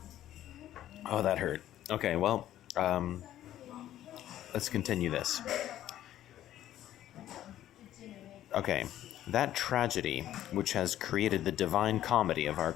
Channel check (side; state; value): right; quieter; 12.6 dB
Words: Oh, that hurt. Okay, well, let's continue this. Okay, that tragedy which has created the divine comedy of our